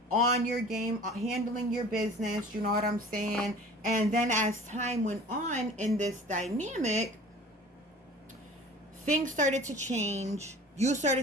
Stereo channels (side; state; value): both; normal; correlation 0.44